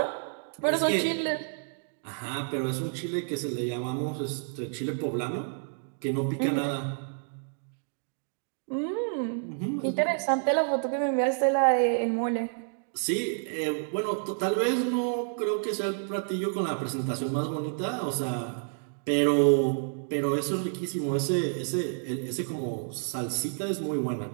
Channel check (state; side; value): silent; left; digital silence